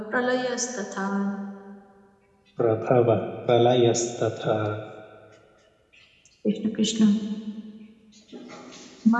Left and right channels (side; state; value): both; identical; correlation 1.00